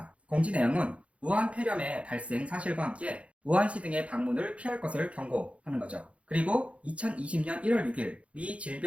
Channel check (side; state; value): left; late; 0.063 ms